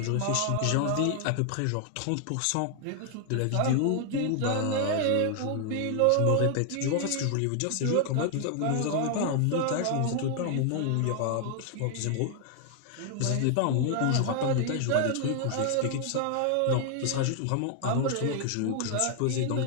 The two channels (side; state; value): both; different; correlation 0.00